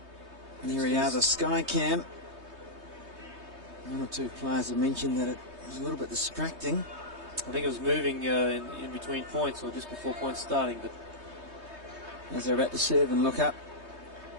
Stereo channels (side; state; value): left; late; 3.2 ms